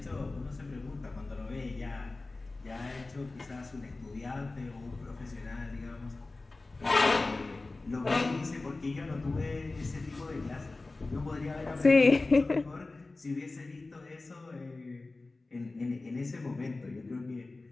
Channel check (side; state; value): right; quieter; 3.3 dB